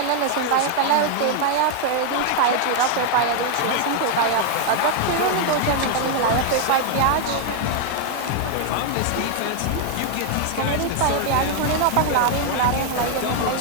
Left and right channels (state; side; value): different; both; correlation 0.00